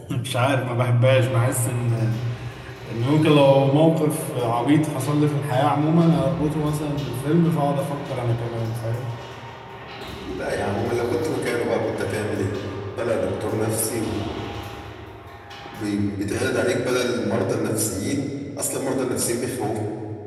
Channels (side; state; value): both; identical; correlation 1.00